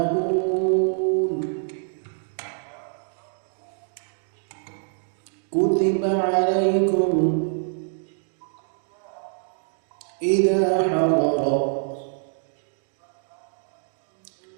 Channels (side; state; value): left; silent; digital silence